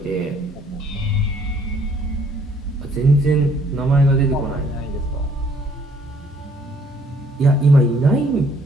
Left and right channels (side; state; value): both; normal; correlation 0.63